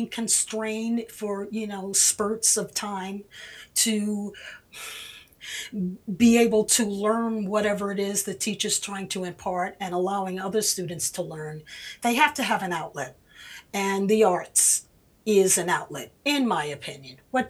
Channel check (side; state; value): both; identical; correlation 1.00